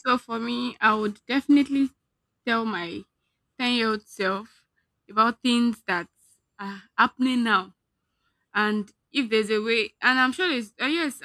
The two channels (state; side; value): identical; both; correlation 1.00